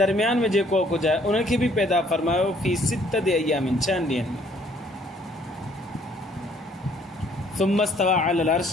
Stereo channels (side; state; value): both; normal; correlation 0.62